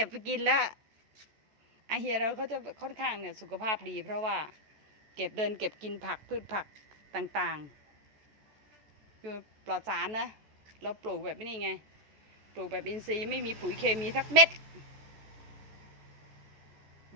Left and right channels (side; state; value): left; late; 14 ms